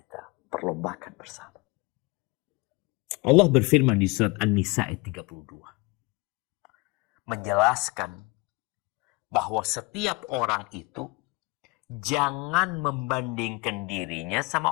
perlombakan bersama. Allah berfirman di surat An-Nisa ayat 32. Menjelaskan bahwa setiap orang itu jangan membandingkan dirinya sama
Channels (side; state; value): right; quieter; 26.0 dB